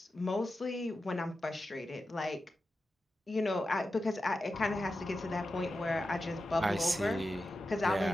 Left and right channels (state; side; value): normal; both; correlation 0.91